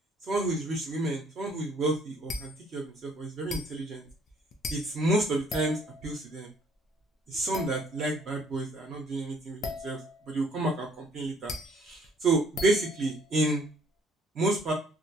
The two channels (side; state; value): both; normal; correlation 0.61